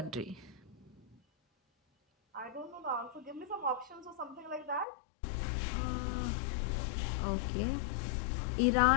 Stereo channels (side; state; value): right; drops out; at 4.9 s